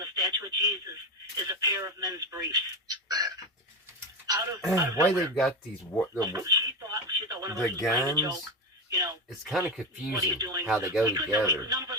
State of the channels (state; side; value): normal; both; correlation 0.18